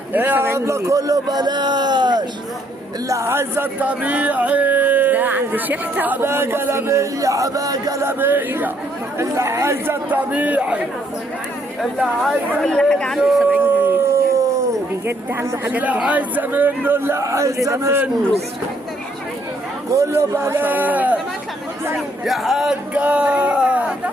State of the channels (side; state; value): both; normal; correlation 0.69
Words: ايه يا الله كله بلاش، اللي عايزه الطبيعي ده عند شحته حبايه جلابيه، حبايه جلابيه، اللي عايزه الطبيعي، اللي عايزه كل حاجه عنده 70 جنيه بجد، عنده حاجات اللي عايزه منه، اللي عايزه منه كله بلاش يا حاجة.